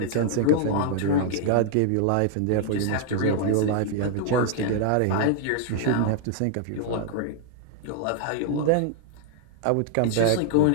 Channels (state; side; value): different; both; correlation 0.00